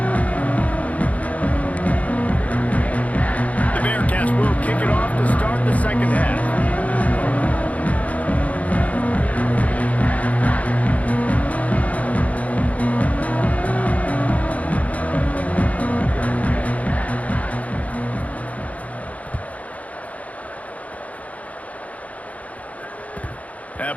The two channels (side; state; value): right; late; 0.069 ms